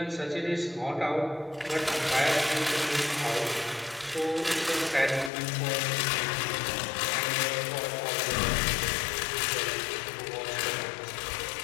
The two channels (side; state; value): right; drops out; at 5.3 s